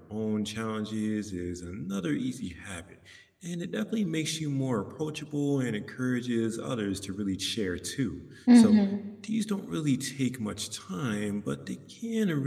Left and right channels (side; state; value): both; identical; correlation 1.00